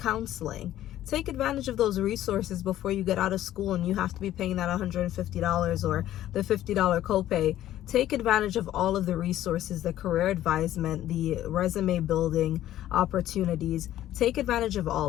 Take advantage of those resources before you get out of school and you have to be paying that $150 or the $50 copay. Take advantage of all of the resources, the career advisement, the resume building opportunities. Take advantage of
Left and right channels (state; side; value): quieter; right; 13.1 dB